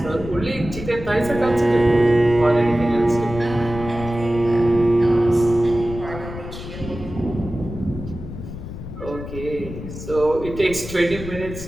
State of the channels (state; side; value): noise; left; rumble, 10 dB below the sound